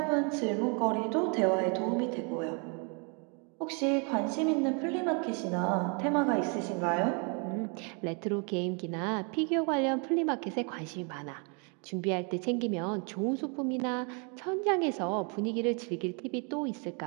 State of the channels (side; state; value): left; quieter; 35.8 dB